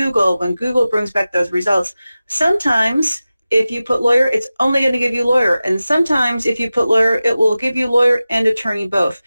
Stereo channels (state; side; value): inverted; both; correlation -0.95